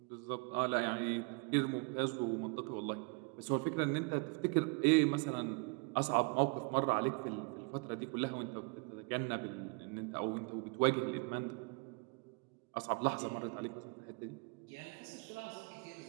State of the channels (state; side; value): quieter; left; 32.9 dB